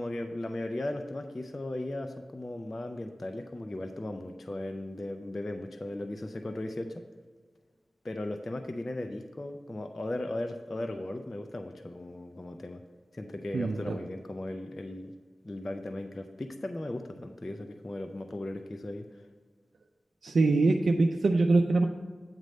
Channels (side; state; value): both; normal; correlation 0.95